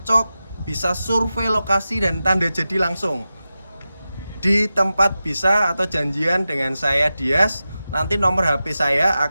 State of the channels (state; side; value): inverted; both; correlation -0.93